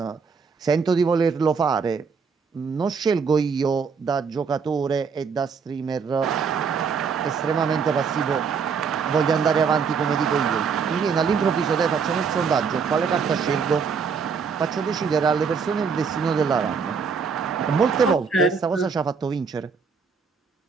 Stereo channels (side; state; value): left; quieter; 5.8 dB